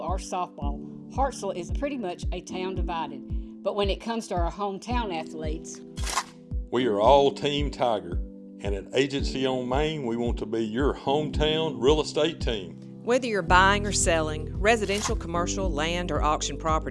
or softball, Hartselle is pretty much a town divided. But when it comes to our hometown athletes, we are all Team Tiger, and at Agency on Main, we want to be your hometown real estate team. Whether you're buying or selling, residential, commercial, land, or auction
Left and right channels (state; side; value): identical; both; correlation 1.00